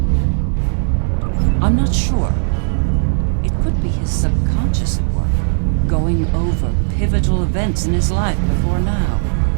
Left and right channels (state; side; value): silent; left; 63 dB below the other